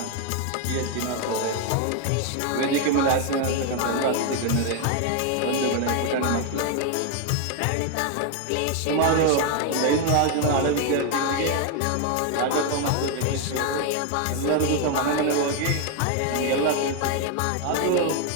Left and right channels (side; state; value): both; different; correlation 0.01